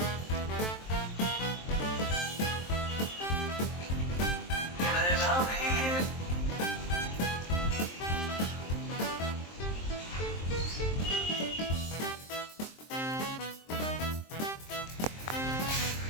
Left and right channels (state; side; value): late; right; 23 ms